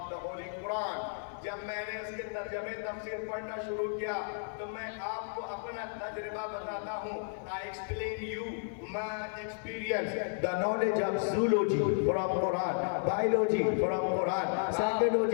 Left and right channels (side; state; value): right; silent; digital silence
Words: the Holy Quran, जब मैंने उसके तर्जमे तफसीर पढ़ना शुरू किया तो मैं आपको अपना तजुर्बा बताता हूँ। I explain you my experience, the knowledge of zoology from Quran, biology from Quran,